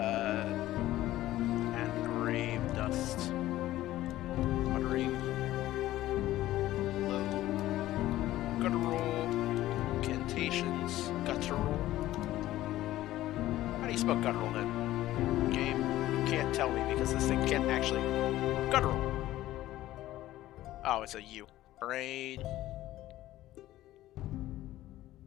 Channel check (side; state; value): right; quieter; 15.1 dB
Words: And grave dust. Muttering low guttural incantations. Guttural. How do you spell guttural then? Game? You can't tell me because this thing can't actually. Guttural. Oh, it's a U. Brain.